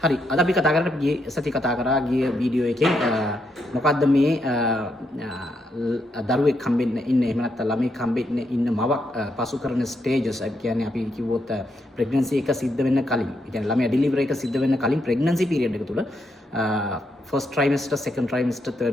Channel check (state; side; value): normal; both; correlation 0.79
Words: හරි. අද අපි කතා කරන්නේ ගිය සති කතා කරා ගිය වීඩියෝ එකෙන් මොකද්ද මේ දරුවෙක් හම්බෙන්න ඉන්න එහෙම නැත්නම් ළමෙක් හම්බෙන්න ඉන්න මවක් පසු කරන ස්ටේජස් ඒ කියන්නේ අපි කිව්වොත් ප්‍රෙග්නන්සි එක සිද්ධ වෙන්න කලින් ඒ කියන්නේ ළමයා ඩෙලිවරි එක සිද්ධ වෙන්න කලින් ප්‍රෙග්නන්සි පීරියඩ් එක තුල ෆස්ට් ට්‍රයිමස්ටර් සෙකන්ඩ් ට්‍රයිමස්ටර්